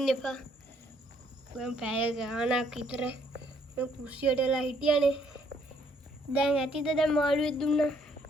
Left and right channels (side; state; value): both; normal; correlation 0.67